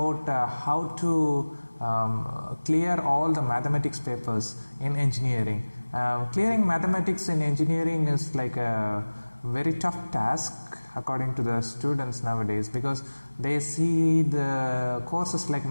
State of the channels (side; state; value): both; inverted; correlation -1.00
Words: how to clear all the mathematics papers in engineering. Clearing mathematics in engineering is like a very tough task according to the students nowadays, because they see the courses like